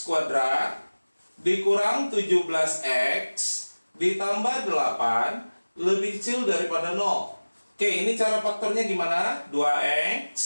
kuadrat dikurang 17x ditambah 8 lebih kecil daripada 0. Oke, ini cara faktornya gimana? 2x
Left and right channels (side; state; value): both; inverted; correlation -1.00